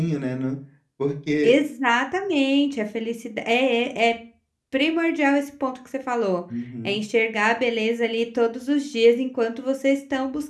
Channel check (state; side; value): identical; both; correlation 1.00